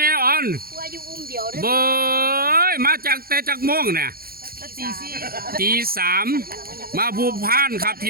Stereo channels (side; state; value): left; late; 0.43 ms